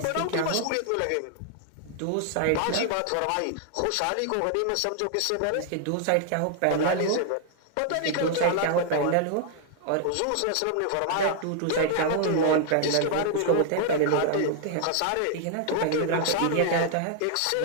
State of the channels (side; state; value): both; different; correlation 0.00